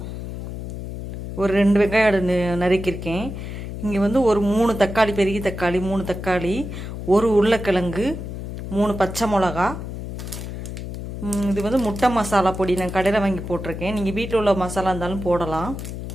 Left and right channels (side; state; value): left; noise; hum, 7 dB below the sound